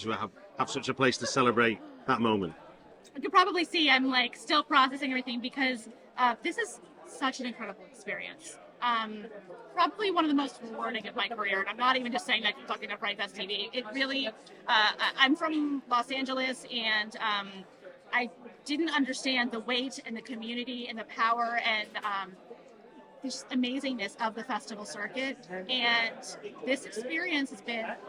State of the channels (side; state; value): both; identical; correlation 1.00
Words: have such a place to celebrate that moment? You can probably see I'm like still processing everything because this is such an incredible experience. Probably one of the most rewarding of my career. And I'm not even just saying that talking to FrightFest TV. It really, I'm from Los Angeles, and I didn't understand the weight and the community and the power and this amazingness of the festival circuit, and this experience has been